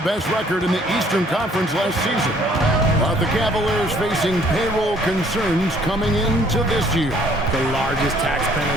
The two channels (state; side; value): normal; both; correlation 0.60